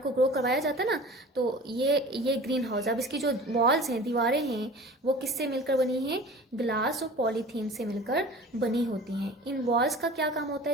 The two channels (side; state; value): both; normal; correlation 0.41